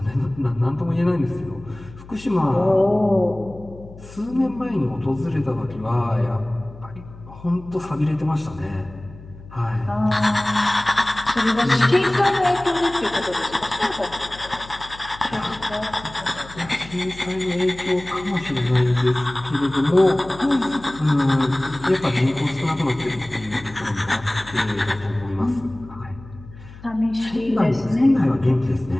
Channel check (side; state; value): left; noise; hum, 18 dB below the sound